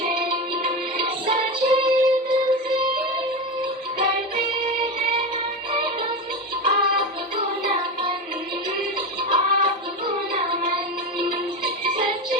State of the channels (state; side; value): normal; both; correlation 0.19